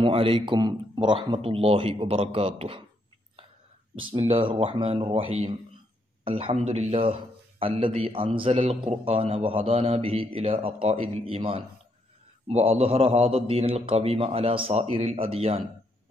അലൈക്കും വറഹ്മത്തുള്ളാഹി വബറകാതുഹു. ബിസ്മില്ലാഹിർ റഹ്മാനിർ റഹീം. അൽഹംദുലില്ലാഹ് അല്ലദീ അൻസലൽ ഖുർആന വഹദാനാ ബിഹി ഇലാ അഖായിദിൽ ഈമാൻ വഅദ്ഹറ ഹാദാ ദീനൽ ഖവീമ അലാ സായിറിൽ അദിയാൻ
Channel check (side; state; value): both; normal; correlation 0.75